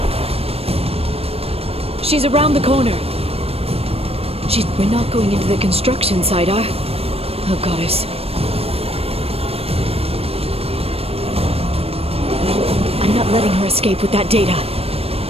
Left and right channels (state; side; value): late; left; 0.28 ms